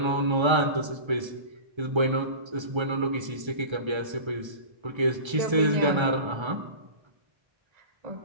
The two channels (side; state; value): left; late; 1.3 ms